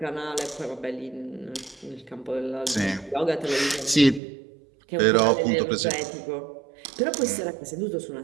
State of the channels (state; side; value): drops out; left; at 4.2 s